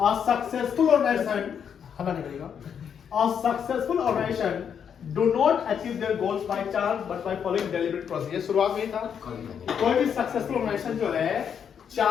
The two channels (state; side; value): quieter; right; 7.7 dB